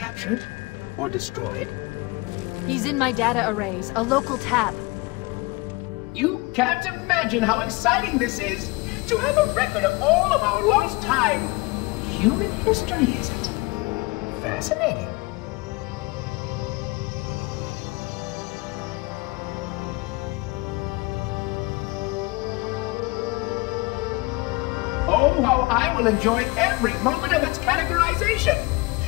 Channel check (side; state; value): right; quieter; 24.8 dB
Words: Or destroyed? He's in my data arrays, a local tap. You can't imagine how exciting this is! To have a record of all of our lost time. Human history, is it? Fascinating. Oh, how I will enjoy every moment of its categorization.